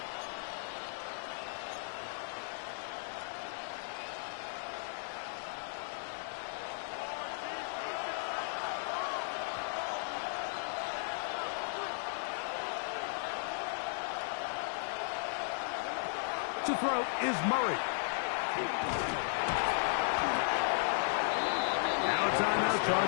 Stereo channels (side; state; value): right; silent; 54 dB below the other